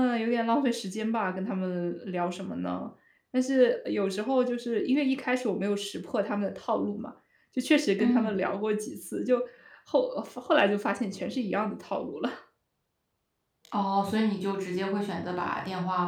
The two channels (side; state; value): both; identical; correlation 1.00